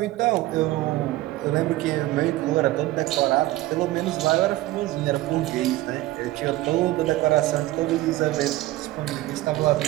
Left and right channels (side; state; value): left; quieter; 17.1 dB